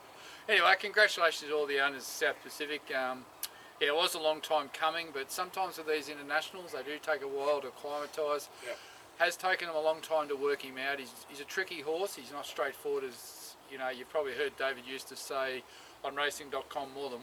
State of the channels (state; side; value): identical; both; correlation 1.00